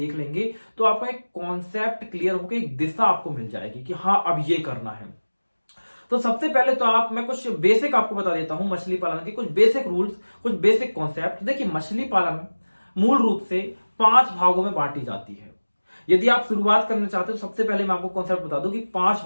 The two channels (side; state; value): both; inverted; correlation -1.00